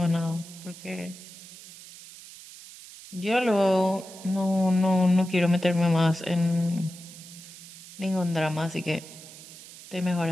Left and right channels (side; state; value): right; noise; hiss, 17 dB below the sound